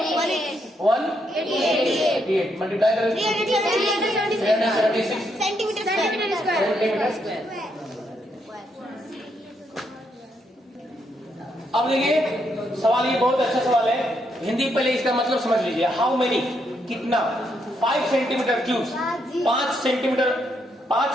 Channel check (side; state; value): both; normal; correlation 0.77